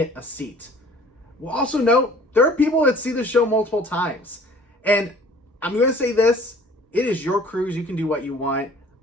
a seat. We'll also note there are people that see the show multiple times. And I'm going to say this, it is your cruise. You can do what you want.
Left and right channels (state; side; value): normal; both; correlation 0.51